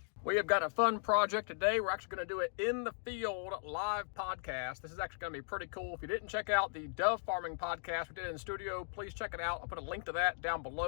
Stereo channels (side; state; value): right; silent; digital silence